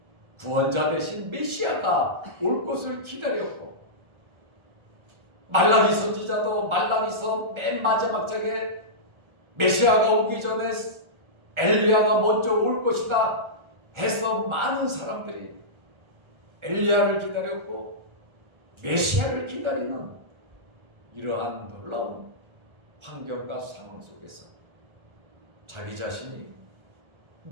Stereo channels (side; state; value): left; late; 1.4 ms